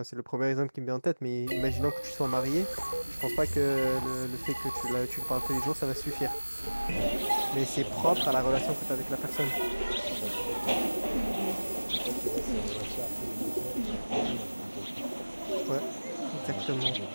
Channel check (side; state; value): both; inverted; correlation -1.00